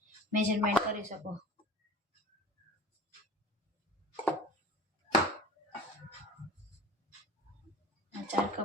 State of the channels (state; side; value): normal; both; correlation 0.38